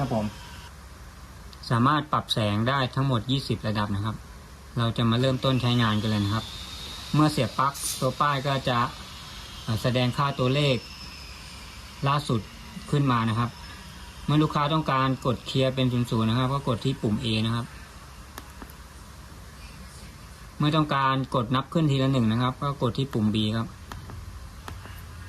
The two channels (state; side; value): identical; both; correlation 1.00